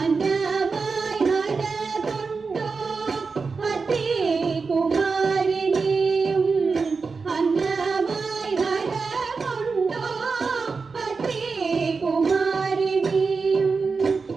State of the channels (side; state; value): left; quieter; 4.7 dB